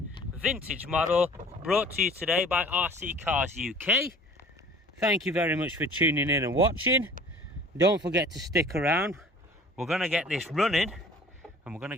vintage model, brought to you today by RC Cars UK. Thank you very much for tuning in and watching. Don't forget to stick around. We're going to get this running and we're going to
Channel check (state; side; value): normal; both; correlation 0.47